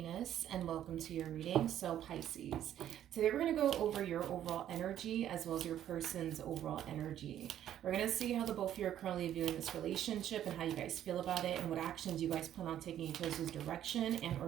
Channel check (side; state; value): left; quieter; 11.1 dB